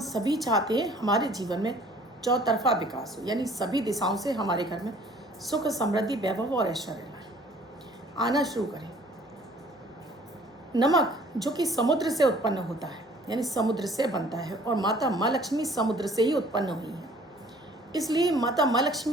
सभी चाहते हैं हमारे जीवन में चौतरफा विकास हो, यानी सभी दिशाओं से हमारे घर में सुख, समृद्धि, वैभव और ऐश्वर्य आना शुरू करें। नमक जो कि समुद्र से उत्पन्न होता है, यानी समुद्र से बनता है, और माता माँ लक्ष्मी समुद्र से ही उत्पन्न हुई है, इसलिए माता माँ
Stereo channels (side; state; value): both; normal; correlation 0.54